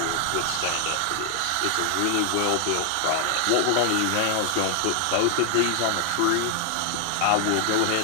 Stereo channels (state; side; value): different; both; correlation 0.00